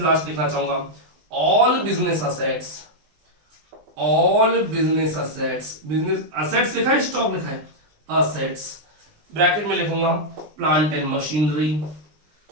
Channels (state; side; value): late; left; 20 ms